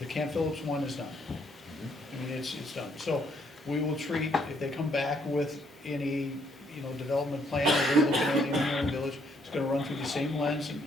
Camp Phillips one is done. I mean, it's done. So we will treat, if they come back with any, development plan, or they're looking at anywhere in the village, it's gonna run through the same lens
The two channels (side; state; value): both; normal; correlation 0.70